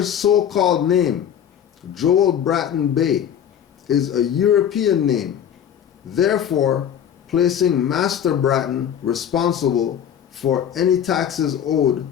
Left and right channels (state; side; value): quieter; right; 9.2 dB